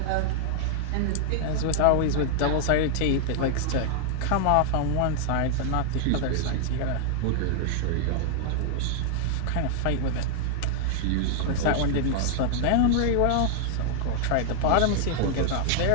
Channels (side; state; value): both; different; correlation -0.01